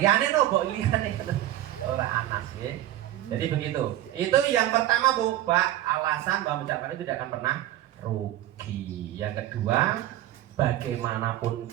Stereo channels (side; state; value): left; quieter; 13.8 dB